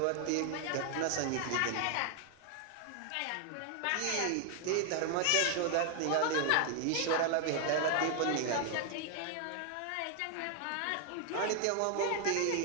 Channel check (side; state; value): both; different; correlation 0.00